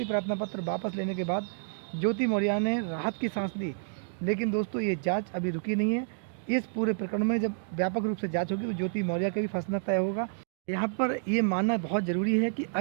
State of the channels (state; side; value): silent; left; digital silence